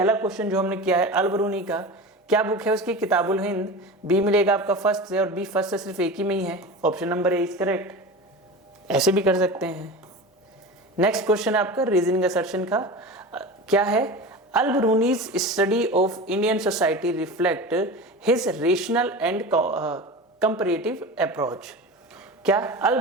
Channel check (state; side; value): normal; both; correlation 0.30